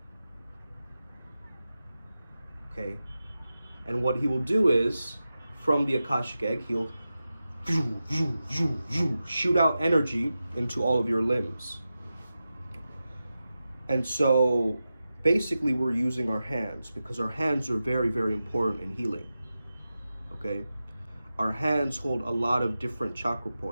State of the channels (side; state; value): both; inverted; correlation -0.92